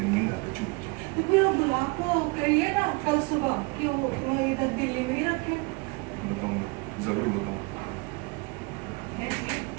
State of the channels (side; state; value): left; quieter; 27.8 dB